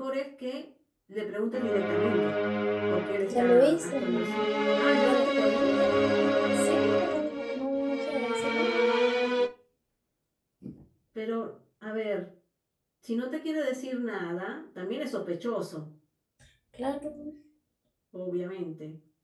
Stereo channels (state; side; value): identical; both; correlation 1.00